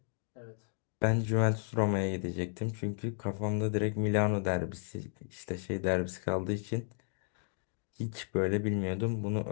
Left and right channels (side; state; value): right; silent; 55 dB below the other